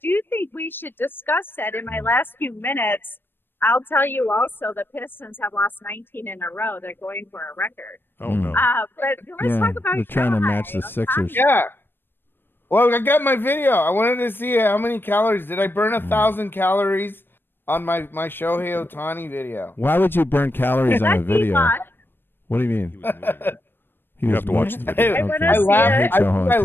think we should discuss that in my last few minutes. I'll tell you also the Pistons have lost 19 in a row. They're going for a record. Oh, no. But let's talk about they're trying to Shohei match the Sixers. Yeah. Well, I got my video. I wanted to see how many calories. Did I burn 1,000 calories on my Shohei Ohtani video? Why would you burn calories on a That's video? not- What do you mean? You have to watch the video. I wanna Okay. I see laughed. it. hate I Joe think I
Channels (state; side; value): late; right; 0.099 ms